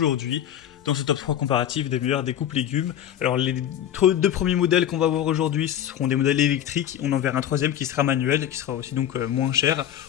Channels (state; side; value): quieter; right; 10.6 dB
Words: dans ce top 3 comparatif des meilleurs découpes légumes. Alors, les deux premiers modèles qu'on va voir aujourd'hui seront des modèles électriques. On en verra un troisième qui sera manuel, qui sera aussi donc moins cher.